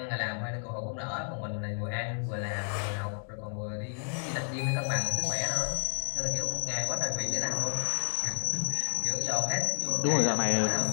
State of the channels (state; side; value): silent; right; digital silence